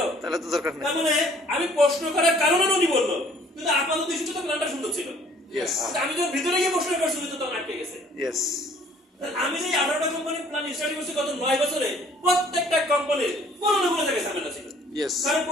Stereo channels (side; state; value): both; normal; correlation 0.57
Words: তাহলে তো দরকার নেই। তার মানে আমি প্রশ্ন করার কারণে উনি বললো, কিন্তু আপাতত দৃষ্টিতে তো প্ল্যানটা সুন্দর ছিল। ইয়েস। আমি যখন ভিতরে গিয়ে প্রশ্ন করছি তো তখন আটকে গেছে। ইয়েস। আমি যে 18টা কোম্পানির প্ল্যান স্টাডি করছি গত 9 বছরে, প্রত্যেকটা কোম্পানির কোনো না কোনো জায়গায় ঝামেলা ছিল। ইয়েস। কারণ